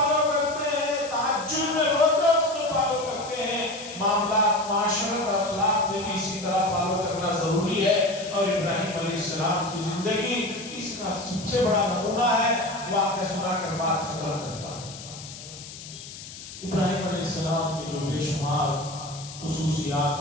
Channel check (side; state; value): left; noise; hiss, 14 dB below the sound